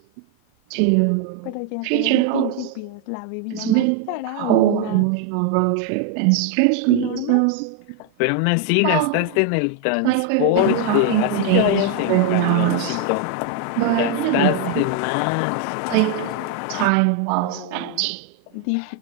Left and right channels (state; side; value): different; both; correlation 0.00